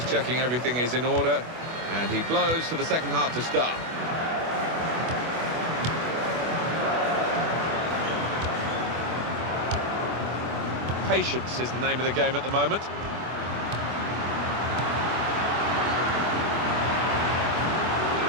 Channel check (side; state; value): left; late; 24 ms